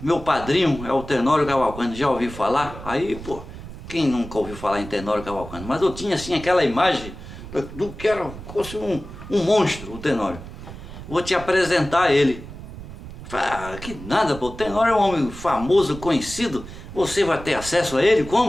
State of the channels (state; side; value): noise; right; rumble, 13 dB below the sound